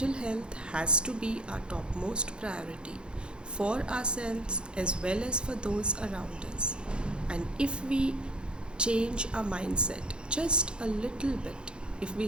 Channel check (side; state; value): left; late; 0.052 ms